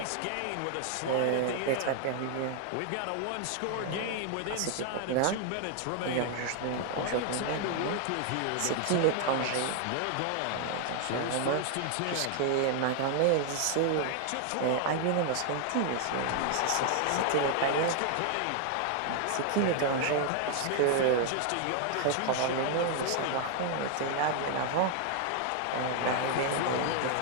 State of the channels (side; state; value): both; different; correlation 0.00